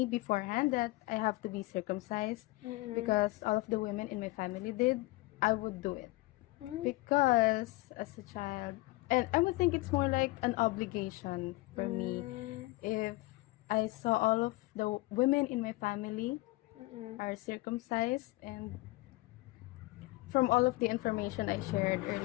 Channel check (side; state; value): right; quieter; 21.2 dB